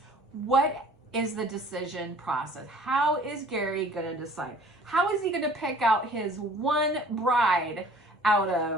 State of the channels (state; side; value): normal; both; correlation 0.51